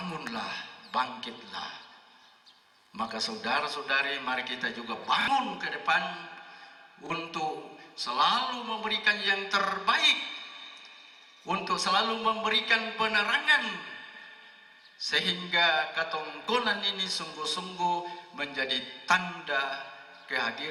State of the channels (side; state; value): both; identical; correlation 1.00